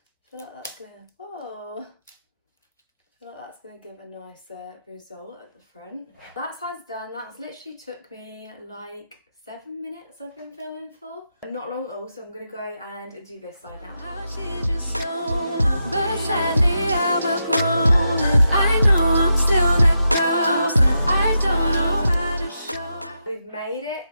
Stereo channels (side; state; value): both; inverted; correlation -0.85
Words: feel like that's gonna, whoa. I feel like that's going to give a nicer result at the front. That side's done. That's literally took me like 7 minutes I've been filming for. Not long at all, so I'm going to go and do this side now. But sadly I've outgrown it. I know I'm still that girl, but I don't know how to show. We've made